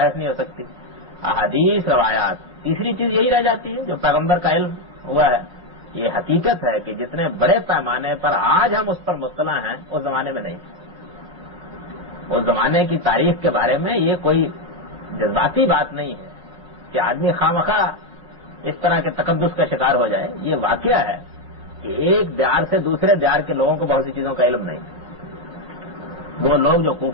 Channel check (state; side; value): late; left; 5.6 ms